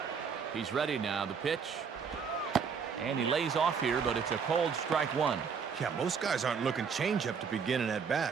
He's ready now. The pitch. And he lays off here, but it's a cold strike one. Yeah, most guys aren't looking changeup to begin an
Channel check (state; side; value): quieter; left; 6.2 dB